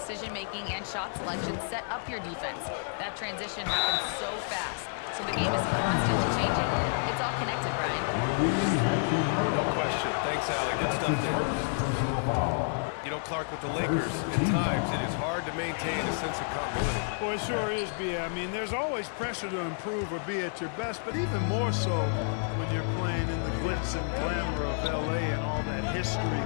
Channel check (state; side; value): silent; right; 58 dB below the other